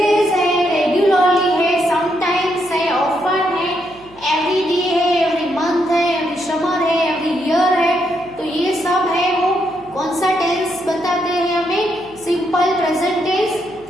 है, regularly है, sometimes है, often है, every day है, every month है, every summer है, every year है। तो ये सब है वो कौन सा टेंस बताते हैं हमें? Simple present tense.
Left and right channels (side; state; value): right; noise; hum, 26 dB below the sound